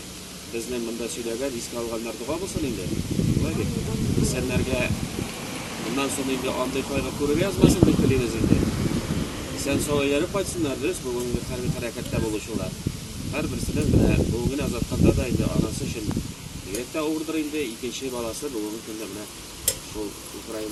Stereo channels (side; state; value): both; identical; correlation 1.00